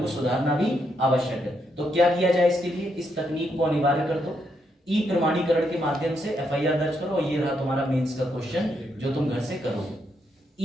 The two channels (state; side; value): normal; both; correlation 0.78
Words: सुधारना भी आवश्यक है। तो क्या किया जाए इसके लिए, इस तकनीक को अनिवार्य कर दो, प्रमाणीकरण के माध्यम से FIR दर्ज करो। और ये रहा तुम्हारा मेंस का क्वेश्चन जो तुम घर से करोगे।